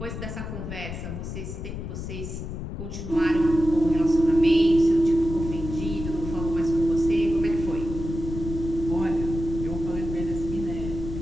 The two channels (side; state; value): left; noise; rumble, 7 dB below the sound